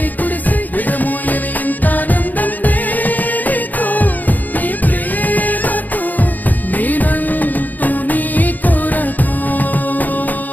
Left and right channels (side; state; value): right; late; 0.083 ms